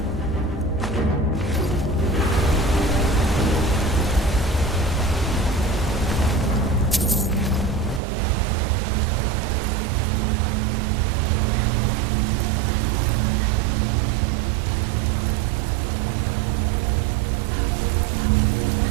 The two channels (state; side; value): drops out; left; at 8.0 s